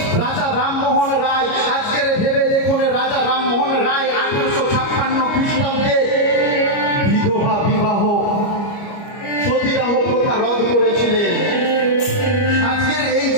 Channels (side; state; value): right; late; 29 ms